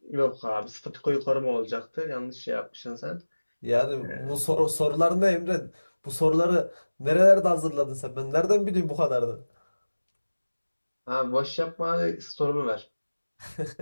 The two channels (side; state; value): both; inverted; correlation -1.00